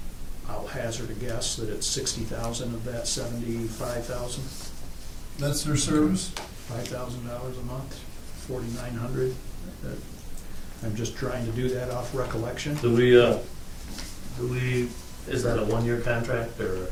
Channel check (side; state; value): both; identical; correlation 1.00